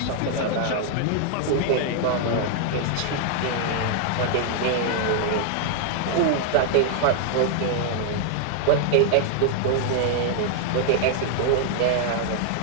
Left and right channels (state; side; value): different; both; correlation -0.01